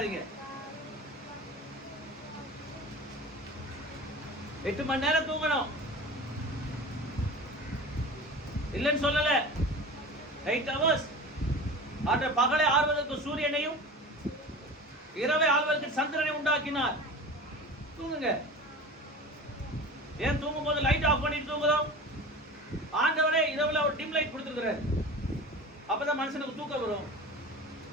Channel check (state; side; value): normal; both; correlation 0.34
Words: 8 மணி நேரம் தூங்கணும் இல்லைன்னு சொல்லல. 8 hours. ஆற்ற பகலை ஆள்வதற்கு சூரியனையும் இரவை ஆள்வதற்கு சந்திரனை உண்டாக்கினார். தூங்குங்க. ஏன் தூங்கும் போது லைட் ஆஃப் பண்ணிட்டு தூங்குறோம்? ஆண்டவரே இரவுல ஒரு டிம் லைட் கொடுத்துருக்கிறார், அப்பதான் மனுஷனுக்கு தூக்கம் வரும்.